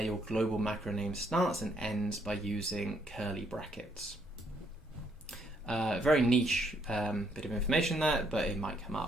your global macro name starts and ends by using curly brackets. Very niche bit of information there, but it might come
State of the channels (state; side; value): normal; both; correlation 0.71